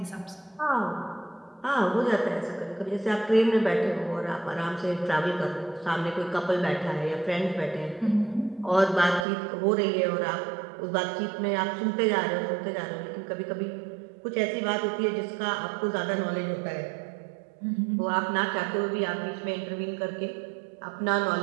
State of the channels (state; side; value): drops out; left; at 9.2 s